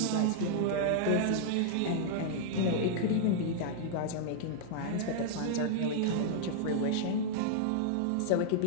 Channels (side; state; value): both; different; correlation -0.01